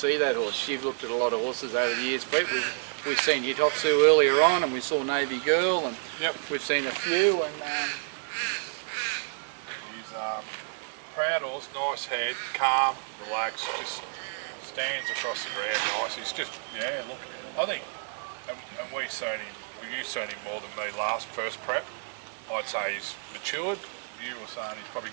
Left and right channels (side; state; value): left; silent; 58 dB below the other